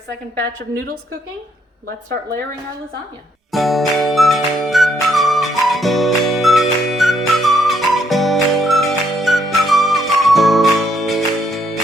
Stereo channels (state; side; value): normal; both; correlation 0.72